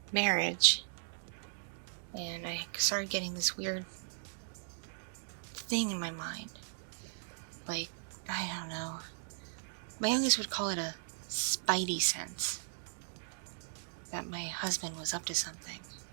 marriage. And I started getting this weird thing in my mind. Like, I don't know. My youngest would call it a spidey sense. That my husband was up to something.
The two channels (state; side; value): silent; left; digital silence